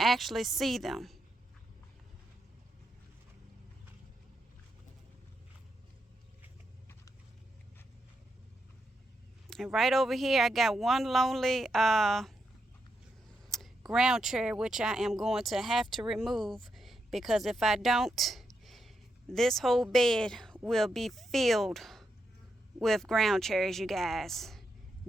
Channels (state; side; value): normal; both; correlation 0.83